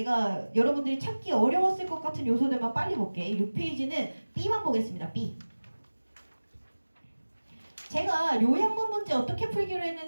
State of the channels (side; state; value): both; inverted; correlation -1.00